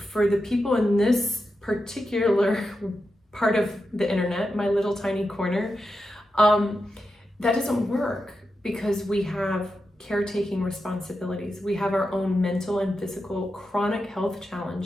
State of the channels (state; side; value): normal; both; correlation 0.89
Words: the people in this particular part of the internet, my little tiny corner, that doesn't work, because we have caretaking responsibilities. We have our own mental and physical chronic health